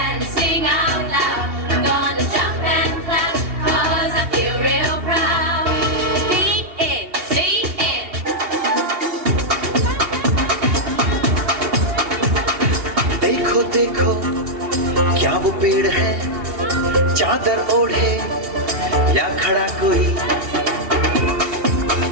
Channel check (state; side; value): late; left; 2.8 ms